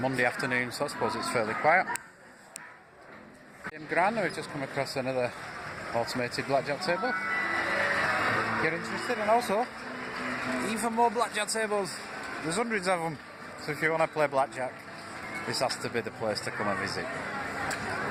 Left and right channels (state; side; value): identical; both; correlation 1.00